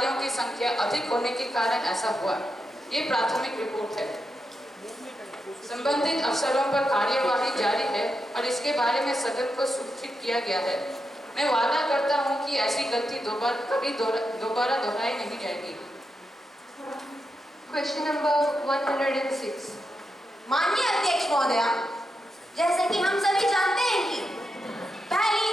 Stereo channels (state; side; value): normal; both; correlation 0.86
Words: की संख्या अधिक होने के कारण ऐसा हुआ। ये प्राथमिक रिपोर्ट है। संबंधित अफसरों पर कार्यवाही जारी है और इसके बारे में सदन को सूचित किया गया है। मैं वादा करता हूं कि ऐसी गलती दोबारा दोहराई नहीं जाएगी। Question number 106. माननीय अध्यक्ष महोदया, जैसे कि हम सभी जानते हैं कि